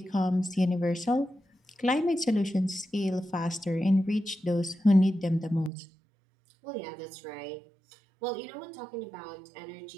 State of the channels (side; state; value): left; drops out; at 5.7 s